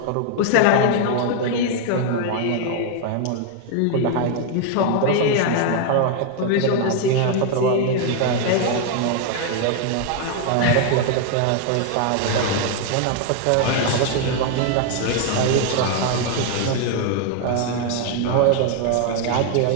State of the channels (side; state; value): both; different; correlation 0.00